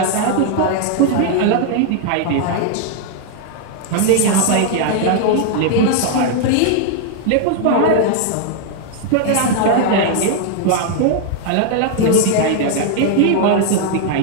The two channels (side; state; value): both; different; correlation 0.00